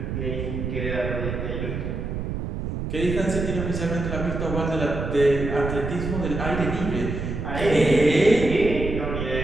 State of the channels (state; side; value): noise; right; rumble, 4 dB below the sound